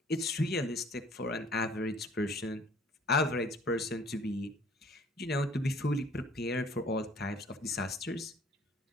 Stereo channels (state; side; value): normal; both; correlation 0.55